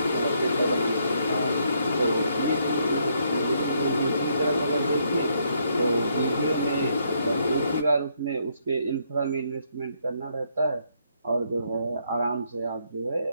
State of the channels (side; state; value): both; inverted; correlation -0.73